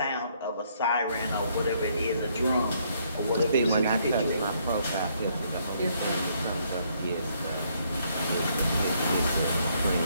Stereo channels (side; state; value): both; inverted; correlation -0.70